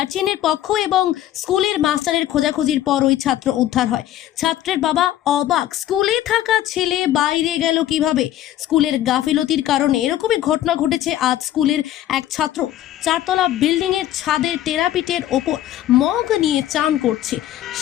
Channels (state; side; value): quieter; right; 12.8 dB